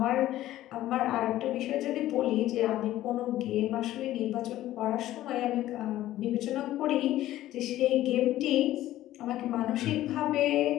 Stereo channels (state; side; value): quieter; right; 14.4 dB